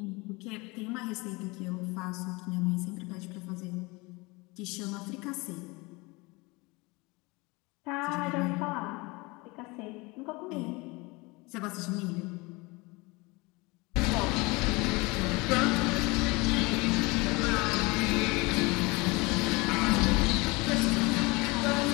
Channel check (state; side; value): quieter; right; 25.1 dB